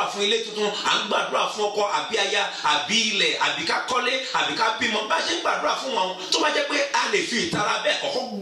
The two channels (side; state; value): both; identical; correlation 1.00